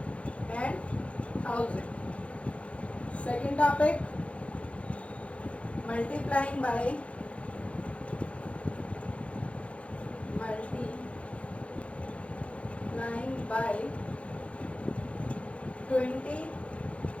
and 1000. Second topic, multiplying by 20,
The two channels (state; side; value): late; right; 0.063 ms